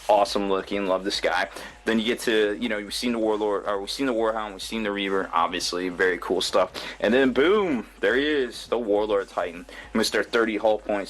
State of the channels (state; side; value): identical; both; correlation 1.00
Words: Awesome looking. Love this guy. Then you get to, you know, we've seen the Warlord, or we've seen the Warhound, we've seen the Reaver, obviously, very cool stuff. And then boom, there he is, the Warlord Titan. Mr. 30 hull